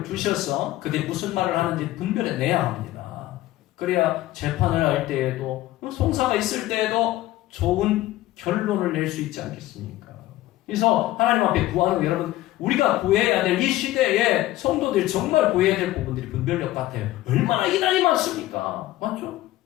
주셔서 그들이 무슨 말을 하는지 분별해내야 합니다. 그래야 재판을 할 때에도 송사가 있을 때에도 좋은 결론을 낼 수 있지 않겠습니까? 그래서 하나님 앞에 구하는 거, 여러분, 우리가 구해야 될 이 시대에 성도들이 정말 구해야 될 부분들이 분별력 같아요. 얼마나 이단이 많습니까? 맞죠?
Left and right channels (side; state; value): right; quieter; 16.1 dB